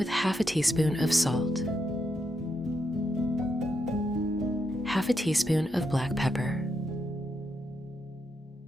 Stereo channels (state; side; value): normal; both; correlation 0.82